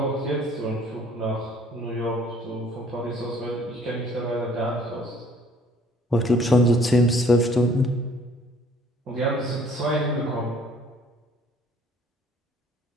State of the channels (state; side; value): normal; both; correlation 0.57